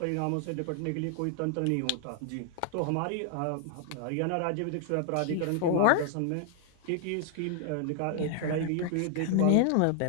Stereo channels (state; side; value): different; both; correlation 0.00